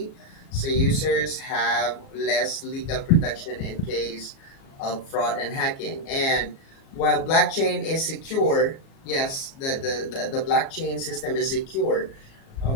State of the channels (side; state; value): right; late; 37 ms